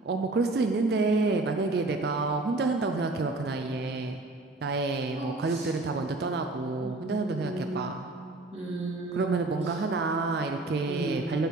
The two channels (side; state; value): left; quieter; 3.1 dB